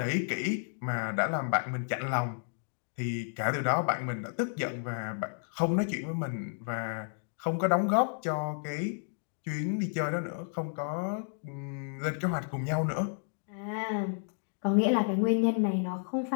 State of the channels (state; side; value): silent; right; 56 dB below the other